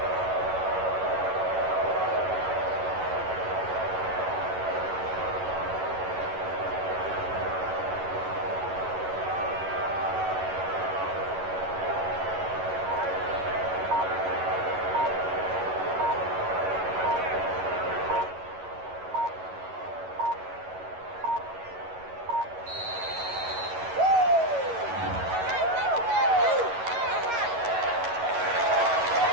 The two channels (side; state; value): left; late; 11 ms